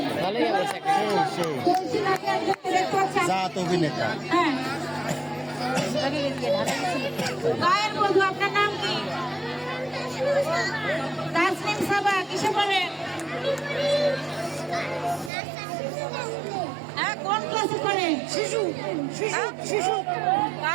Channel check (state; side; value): drops out; left; at 15.3 s